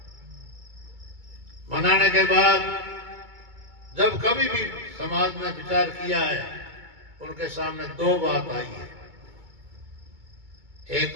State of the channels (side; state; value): left; late; 2.3 ms